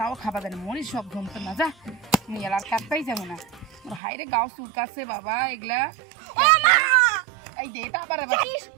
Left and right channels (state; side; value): drops out; left; at 4.0 s